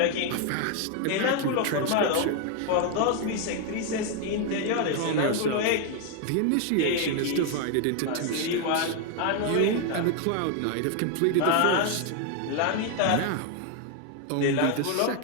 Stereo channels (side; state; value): both; different; correlation 0.01